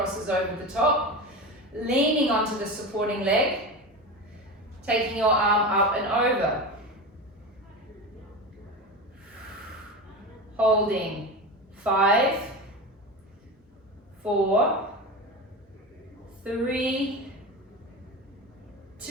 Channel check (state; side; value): normal; both; correlation 0.24